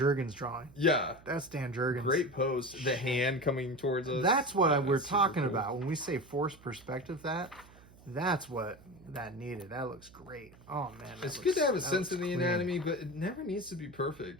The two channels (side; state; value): right; noise; hum, 23 dB below the sound